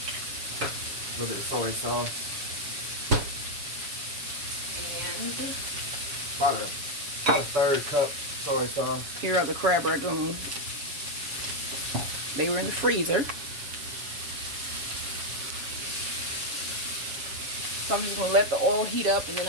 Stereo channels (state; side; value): late; left; 7.2 ms